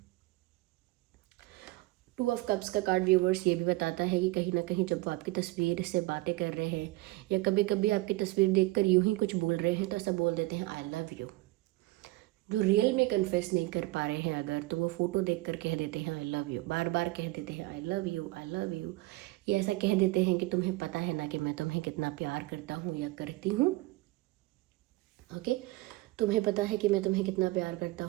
टू ऑफ कप्स का कार्ड व्यूवर्स ये भी बताता है कि कहीं ना कहीं जब वो आपकी तस्वीर से बातें कर रहे हैं या कभी कभी आपकी तस्वीर देखकर यूं ही कुछ बोल रहे हैं, तो ऐसा बोल देते हैं आई लव यू। जो रियल में कन्फेस नहीं कर पा रहे हैं अगर, तो वो फ़ोटो देखकर कह देते हैं आई लव यू, बार बार कह देते हैं I love you, I love you. ये ऐसा कह देते हैं कि तुम्हें पता है ना कि मैं तुम्हें कितना प्यार करता हूँ या करती हूँ। ओके, तुम्हें पता है कि मैं तुम्हें कितना प्यार करता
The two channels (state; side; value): quieter; left; 20.4 dB